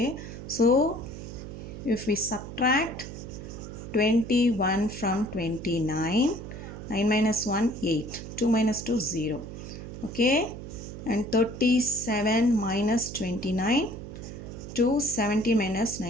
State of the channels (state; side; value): noise; right; hum, 10 dB below the sound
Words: so if we subtract 21 from 29, 9 minus 1, 8, 2 minus 2, 0. Okay, and 37 minus 29, 270 minus